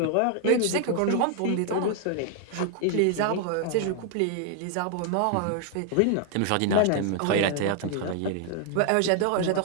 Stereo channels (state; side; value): different; both; correlation 0.00